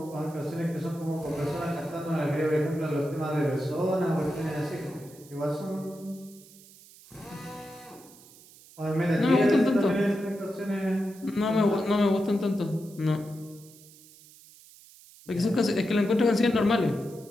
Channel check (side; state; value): right; noise; hiss, 23 dB below the sound